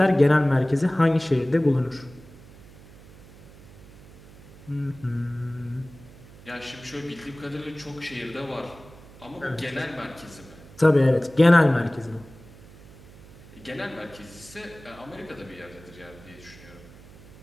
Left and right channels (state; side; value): noise; right; hum, 21 dB below the sound